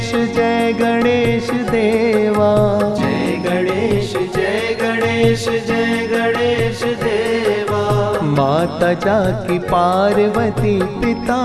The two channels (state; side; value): identical; both; correlation 1.00